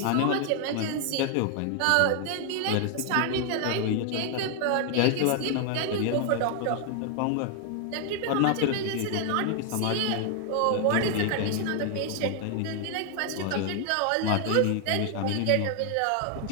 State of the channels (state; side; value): different; both; correlation 0.00